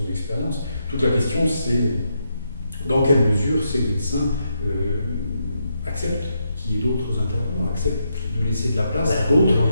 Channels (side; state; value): both; inverted; correlation -0.81